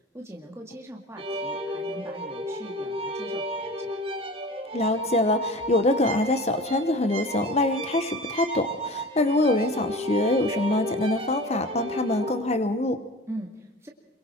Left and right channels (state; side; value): normal; both; correlation 0.38